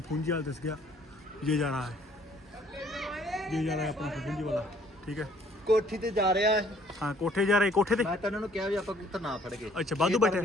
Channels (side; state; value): both; normal; correlation 0.60